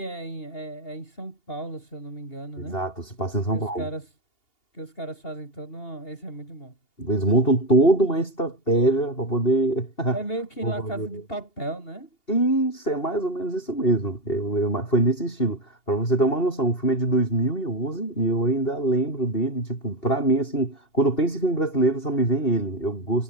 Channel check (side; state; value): right; late; 2.8 ms